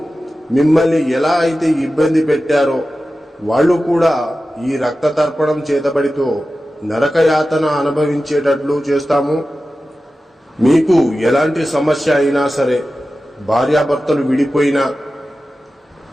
మిమ్మల్ని ఎలా అయితే ఇబ్బంది పెట్టారో వాళ్ళు కూడా ఈ రక్త తర్పణం చేతబడితో నరకయాతన అనుభవించేటట్లు చేస్తాము. మీకు ఎలాంటి సమస్య అయినా సరే, భార్యాభర్తలు విడిపోయినా,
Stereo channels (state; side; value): normal; both; correlation 0.94